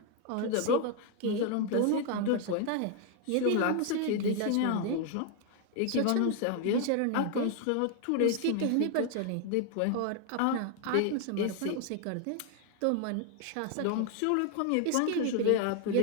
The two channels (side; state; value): both; different; correlation 0.00